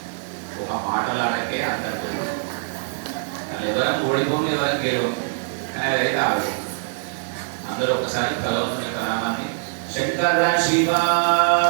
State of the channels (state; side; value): silent; left; digital silence